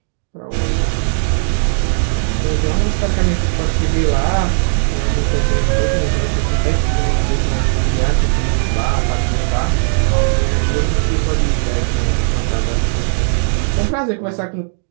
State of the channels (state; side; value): silent; left; digital silence